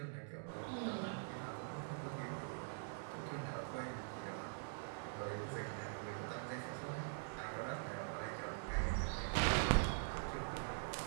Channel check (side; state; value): left; silent; digital silence